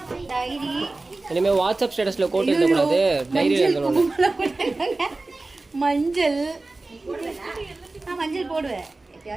டைரி இனிமே வாட்ஸ்அப் ஸ்டேட்டஸ்ல கோட் எழுத கூடாது டைரியில எழுதணும் மஞ்சள் நான் மஞ்சள் போடுவேன்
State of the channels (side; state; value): left; quieter; 3.2 dB